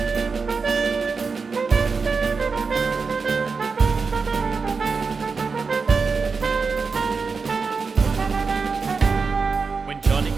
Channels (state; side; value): quieter; left; 4.9 dB